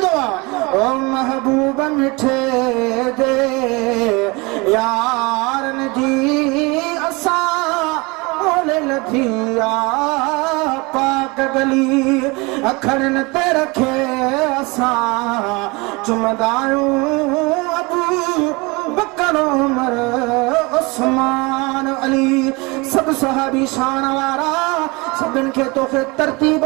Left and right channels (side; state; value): left; quieter; 26.3 dB